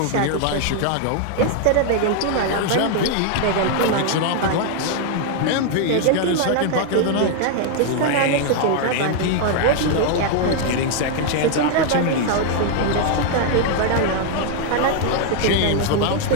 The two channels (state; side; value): different; both; correlation 0.00